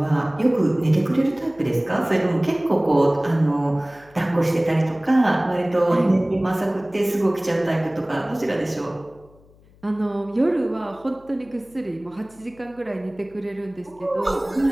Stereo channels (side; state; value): left; noise; hum, 28 dB below the sound